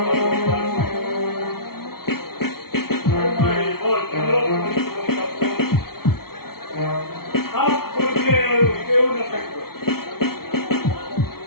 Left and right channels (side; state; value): right; late; 0.94 ms